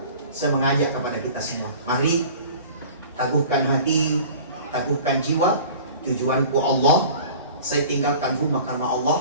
saya mengajak kepada kita semua, mari teguhkan hati, teguhkan jiwa. Tujuanku Allah, saya tinggalkan rumah karena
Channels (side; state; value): both; inverted; correlation -0.43